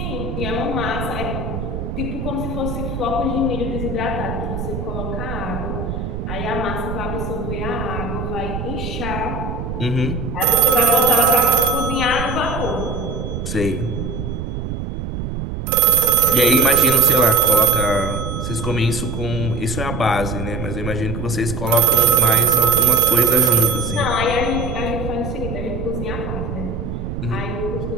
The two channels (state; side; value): noise; right; rumble, 5 dB below the sound